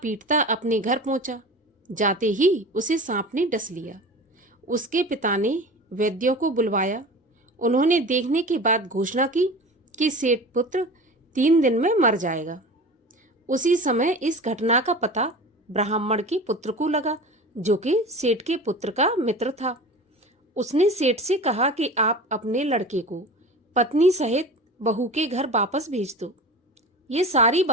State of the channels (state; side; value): normal; both; correlation 0.35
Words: अपने घर पहुंचा। जाते ही उसे सांप ने डस लिया। उसके पिता ने वैद्यों को बुलवाया। उन्होंने देखने के बाद घोषणा की कि सेठ पुत्र 3 दिन में मर जाएगा। उसी समय इस घटना का पता ब्राह्मण के पुत्र को लगा, जो कि सेठ के पुत्र का मित्र था। उसने सेठ से कहा कि आप अपने लड़के को पत्नी सहित बहू के घर वापस भेज दो। ये सारी